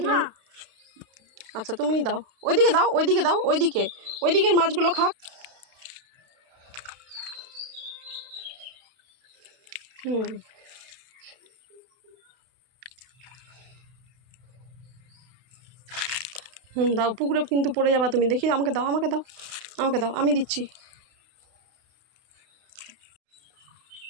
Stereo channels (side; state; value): left; late; 32 ms